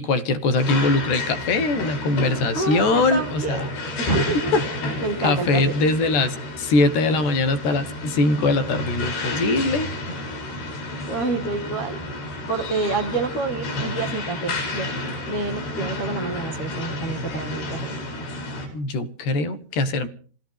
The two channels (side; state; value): right; late; 13 ms